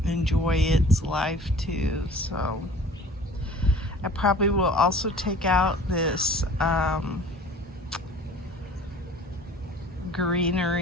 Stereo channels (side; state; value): both; normal; correlation 0.46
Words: enjoy its life too. So I probably will also take out this